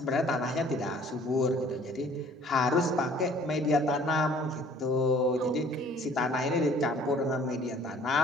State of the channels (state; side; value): normal; both; correlation 0.54